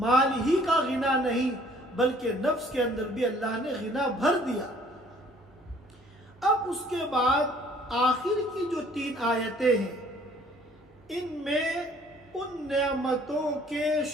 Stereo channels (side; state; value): both; normal; correlation 0.58